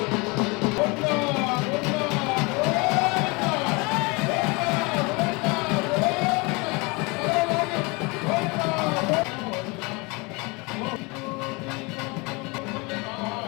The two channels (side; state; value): right; quieter; 27.4 dB